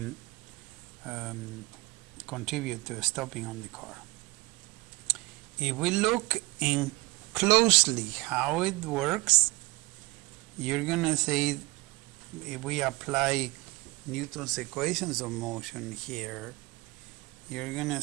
contribute to stopping on the car. If we look in closely how it works, you're going to say, if we apply Newton's equations of motion here, you're going to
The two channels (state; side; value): quieter; left; 23.7 dB